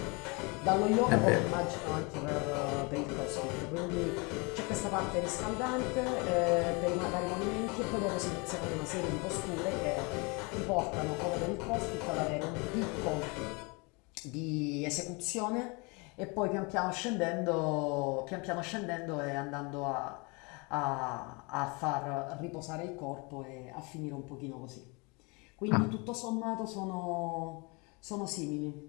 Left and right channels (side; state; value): right; quieter; 29.5 dB